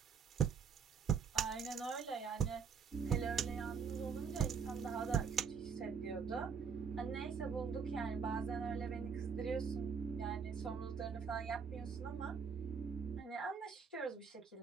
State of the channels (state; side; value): quieter; left; 6.2 dB